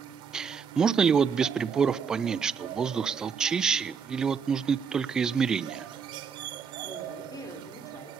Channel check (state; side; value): quieter; left; 6.3 dB